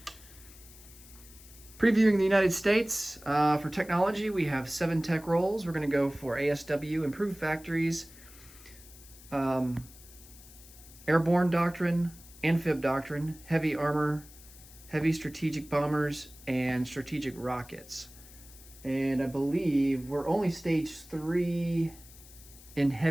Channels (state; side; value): noise; left; hiss, 20 dB below the sound